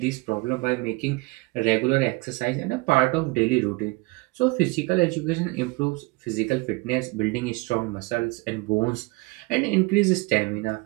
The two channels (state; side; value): quieter; left; 24.8 dB